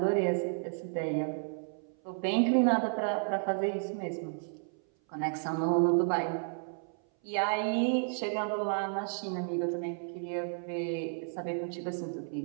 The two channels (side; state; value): left; silent; 56 dB below the other